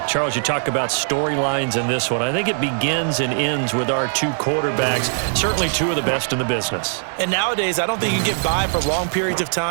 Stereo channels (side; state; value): left; silent; digital silence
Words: Charles, you talk about storylines in this one. I think it begins and ends with our two quarterbacks, certainly two of the best in the business. And nowadays, I don't think you can get by for long periods of